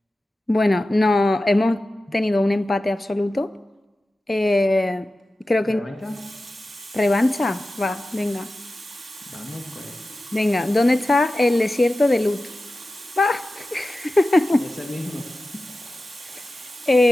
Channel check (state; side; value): normal; both; correlation 0.94